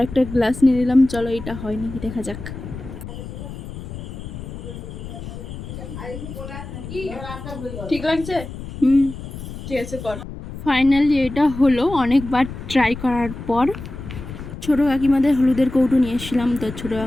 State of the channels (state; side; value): noise; left; rumble, 10 dB below the sound